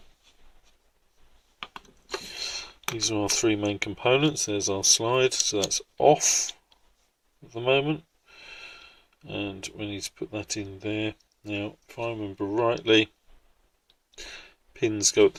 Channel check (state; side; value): identical; both; correlation 1.00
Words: These are our three main components. There's our slide, so that's off at the moment. And we need to put that in there. Now, if I remember rightly, pins go at